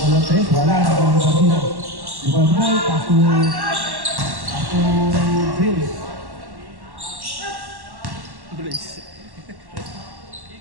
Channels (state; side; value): late; left; 1.1 ms